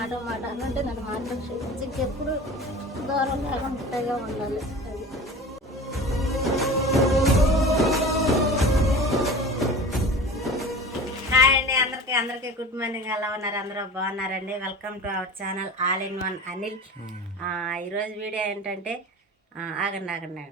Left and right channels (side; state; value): both; normal; correlation 0.36